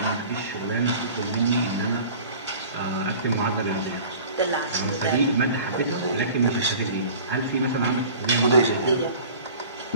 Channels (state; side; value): inverted; both; correlation -0.44